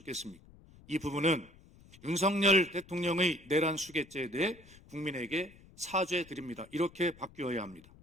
이 부분은 윤석열 대통령의 내란 수괴죄에 대해 국민에게 사죄드립니다. 이렇게 바뀌어야 합니다.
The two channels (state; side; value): noise; left; rumble, 23 dB below the sound